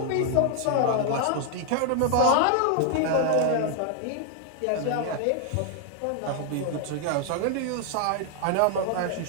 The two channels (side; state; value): both; different; correlation 0.00